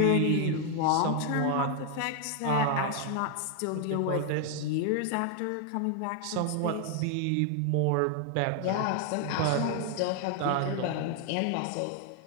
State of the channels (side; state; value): both; different; correlation 0.00